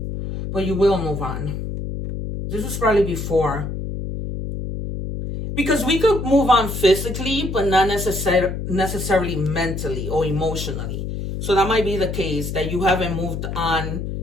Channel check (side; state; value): left; noise; hum, 5 dB below the sound